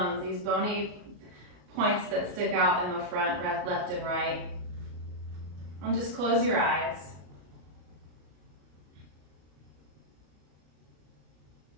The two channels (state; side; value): late; left; 33 ms